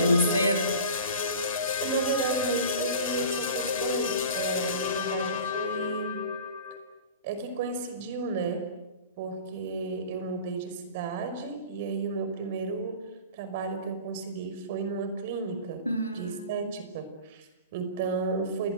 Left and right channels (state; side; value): inverted; both; correlation -0.38